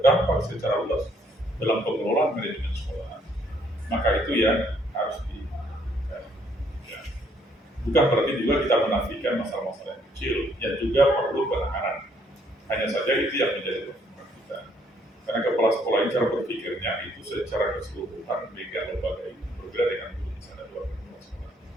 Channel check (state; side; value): normal; both; correlation 0.67